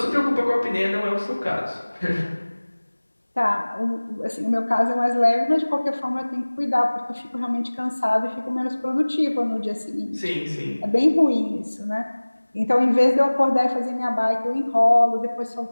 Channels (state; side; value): inverted; both; correlation -1.00